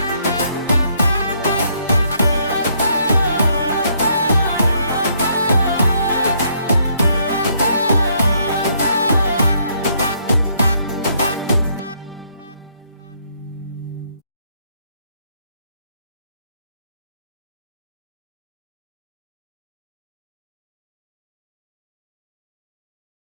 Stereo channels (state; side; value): inverted; both; correlation -0.70